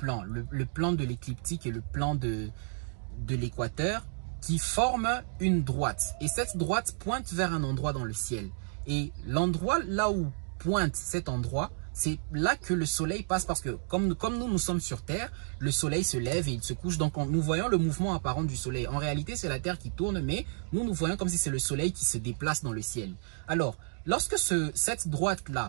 le plan de l'écliptique et le plan de l'équateur, qui forment une droite. Et cette droite pointe vers un endroit dans le ciel. Et l'endroit là où pointe cet endroit, c'est là que le soleil passe, parce que comme nous sommes sur Terre, le soleil se lève et il se couche. Donc nous voyons le mouvement apparent du soleil. En réalité, c'est la Terre qui tourne, mais nous voyons comme si c'est le soleil qui se déplace dans le ciel. Alors, lorsque cette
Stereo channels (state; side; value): silent; left; digital silence